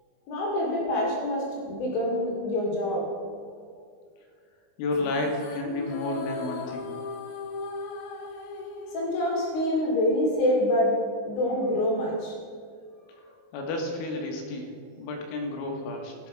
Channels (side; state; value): right; late; 19 ms